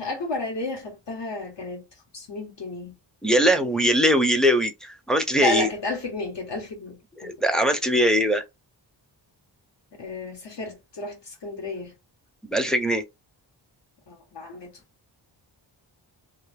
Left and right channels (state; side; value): normal; both; correlation 0.52